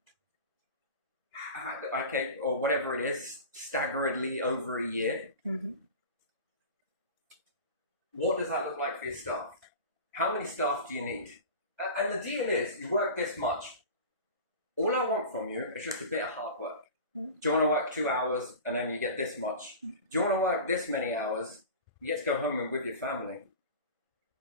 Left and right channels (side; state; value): both; inverted; correlation -0.34